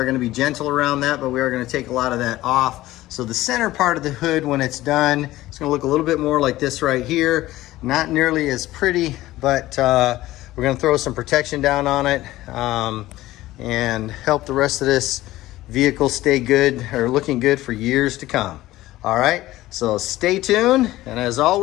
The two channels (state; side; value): quieter; right; 16.4 dB